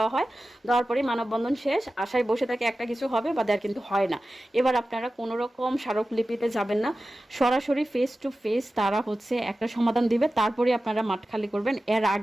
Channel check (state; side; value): normal; both; correlation 0.94